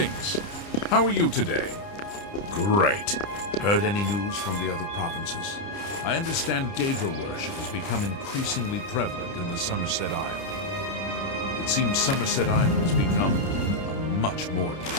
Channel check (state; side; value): late; right; 30 ms